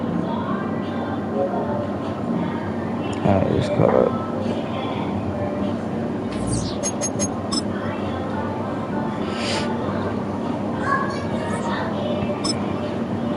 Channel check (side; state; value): both; identical; correlation 1.00